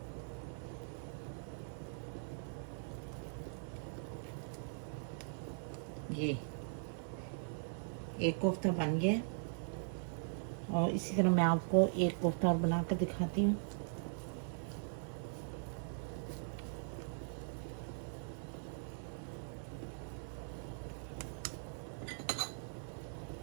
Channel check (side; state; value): left; silent; 51 dB below the other